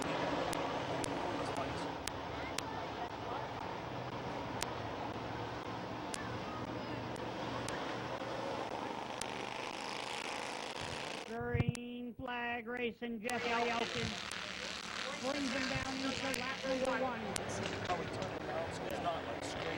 Green flag racing, Jeff Elkin brings him down into lap number 1. How we turn it around so it's not like straight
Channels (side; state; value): both; identical; correlation 1.00